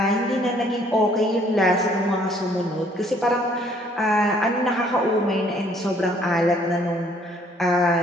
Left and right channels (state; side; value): normal; both; correlation 0.62